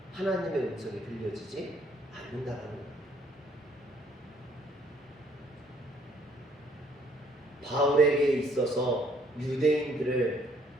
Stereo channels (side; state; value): both; normal; correlation 0.65